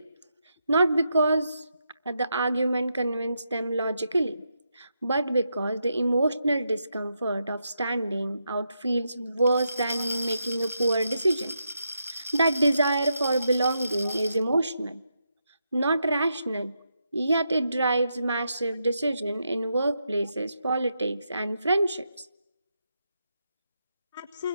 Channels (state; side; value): inverted; both; correlation -0.83